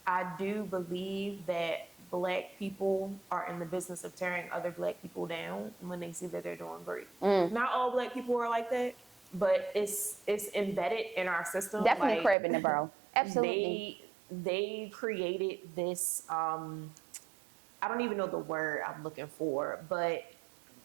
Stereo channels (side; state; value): left; drops out; at 12.4 s